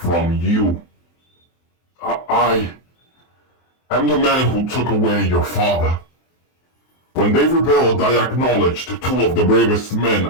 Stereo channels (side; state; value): right; late; 23 ms